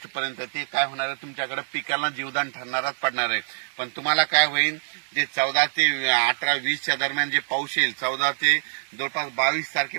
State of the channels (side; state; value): left; silent; digital silence